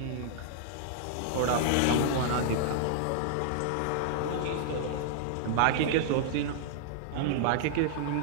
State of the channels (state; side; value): different; both; correlation -0.01